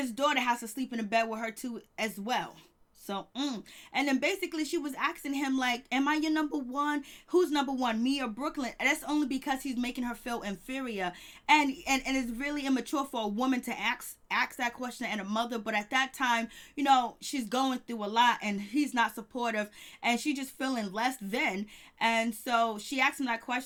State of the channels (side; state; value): both; identical; correlation 1.00